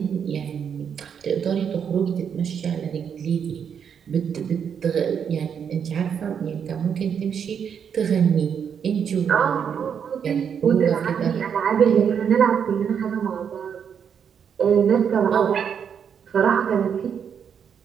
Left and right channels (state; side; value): quieter; left; 7.5 dB